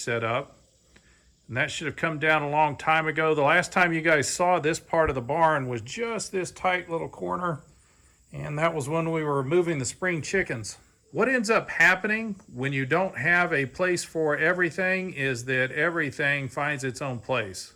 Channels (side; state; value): both; identical; correlation 1.00